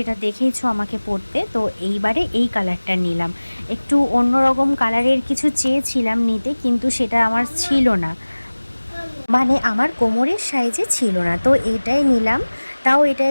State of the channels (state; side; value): inverted; both; correlation -1.00